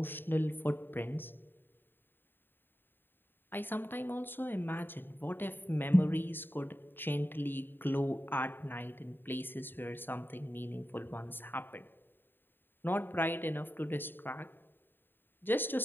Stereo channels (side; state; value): right; late; 0.096 ms